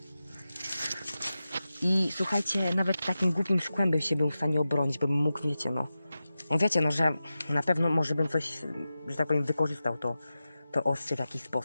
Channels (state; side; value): inverted; both; correlation -0.93